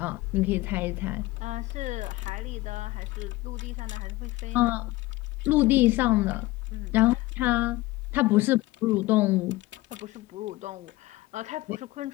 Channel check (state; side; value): quieter; right; 19.3 dB